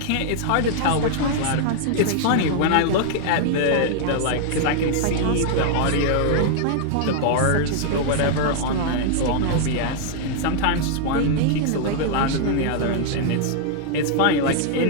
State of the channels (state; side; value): different; both; correlation -0.01